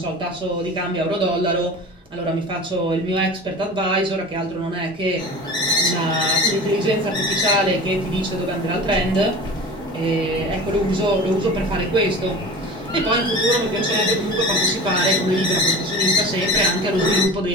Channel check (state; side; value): normal; both; correlation 0.36